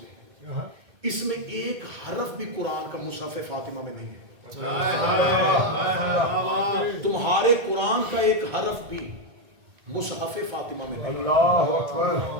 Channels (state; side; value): late; left; 1.8 ms